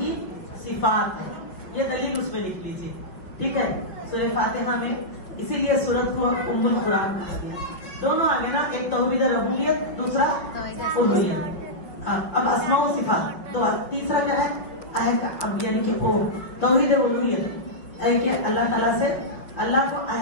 صفات ہے. یہ دلیل اس میں لکھ لیجیے. ٹھیک ہے, سورہ فاتحہ میں اسی لیے سورت کو ام القرآن کہا گیا. دونوں آگے نا, ایک توحید ربوبیت دوسرا الوہیت. اب اسماء و صفات تو تیسرا کیا ہے یعنی کہ او توحید الوہیت ہے کہ اللہ تعالیٰ سے اللہ کو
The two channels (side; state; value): right; late; 5.5 ms